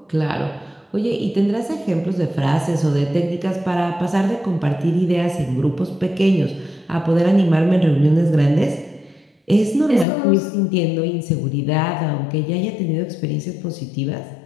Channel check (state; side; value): drops out; right; at 10.1 s